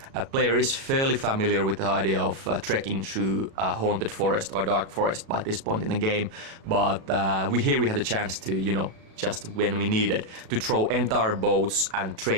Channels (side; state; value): left; late; 37 ms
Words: A player is fairly familiar with the idea of trekking through a haunted forest or dark forest by this point in the game, but we had a chance to, you know, just when we needed, to throw entire boats and